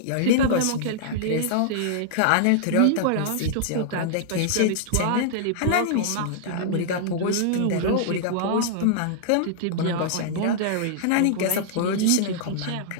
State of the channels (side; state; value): both; different; correlation -0.01